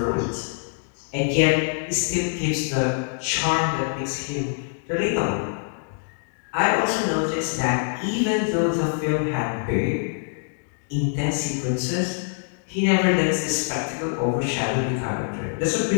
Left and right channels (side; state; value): right; silent; digital silence